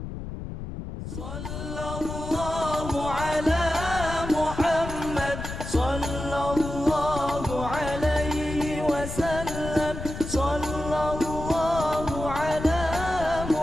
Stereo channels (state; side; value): noise; left; rumble, 8 dB below the sound